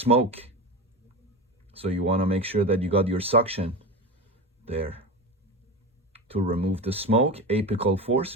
So you want to make sure that you got your suction there. To remove the smoke, apical force,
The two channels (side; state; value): both; normal; correlation 0.24